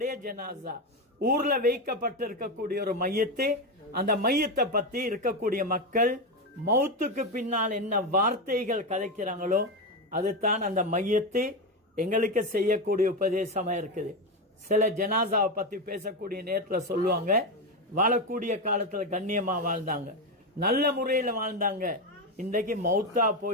ஜனாசா, ஊர்ல வைக்கப்பட்டிருக்கக்கூடிய ஒரு மையத்தை, அந்த மையத்தை பத்தி இருக்கக்கூடிய மக்கள் மௌத்துக்கு பின்னால் என்ன வார்த்தைகள் கதைக்கிறாங்களோ அதுதான் அந்த மையத்தை எங்களுக்கு செய்யக்கூடிய உபதேசமா இருக்குது. சில ஜனாசாவை பத்தி பேசக்கூடிய நேரத்தில் சொல்லுவாங்க, வாழக்கூடிய காலத்துல கண்ணியமா வாழ்ந்தாங்க, நல்ல முறையில் வாழ்ந்தாங்க, இன்றைக்கு மௌத்தா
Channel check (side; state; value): both; normal; correlation 0.12